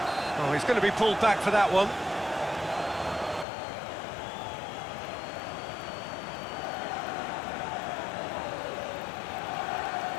Oh, he's going to be pulled back for that one.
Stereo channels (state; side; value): drops out; right; at 3.5 s